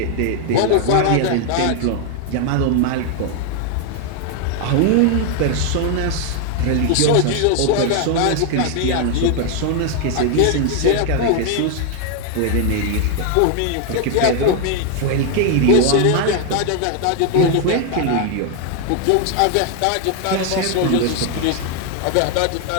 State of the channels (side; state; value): both; different; correlation 0.01